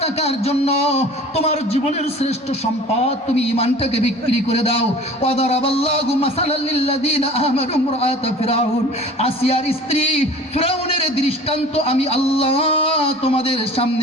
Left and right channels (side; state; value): both; normal; correlation 0.43